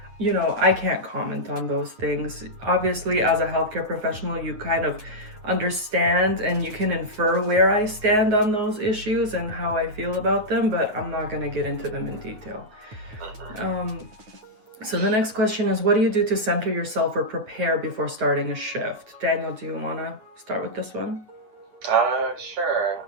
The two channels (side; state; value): left; late; 9.2 ms